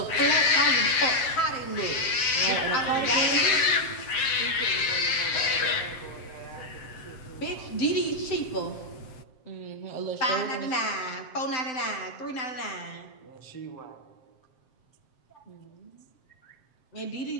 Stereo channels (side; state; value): right; late; 7.5 ms